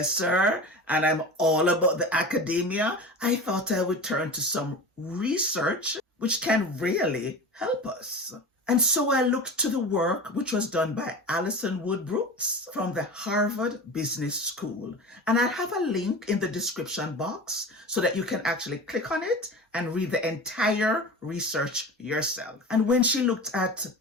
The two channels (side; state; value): both; normal; correlation 0.31